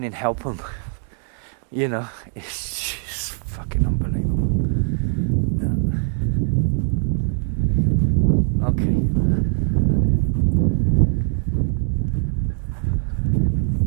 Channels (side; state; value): left; silent; digital silence